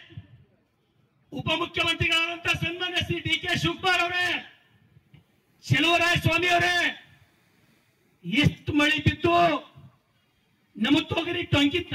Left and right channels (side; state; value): both; identical; correlation 1.00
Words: ಉಪಮುಖ್ಯಮಂತ್ರಿಗಳಾದಂತ ಸನ್ಮಾನ್ಯ ಶ್ರೀ DK ಶಿವಕುಮಾರ್ ಅವರೇ, ಚೆಲುವರಾಯ ಸ್ವಾಮಿ ಅವರೇ, ಎಷ್ಟು ಮಳೆ ಬಿದ್ದು ನಮ್ಮ ತೊಗರಿ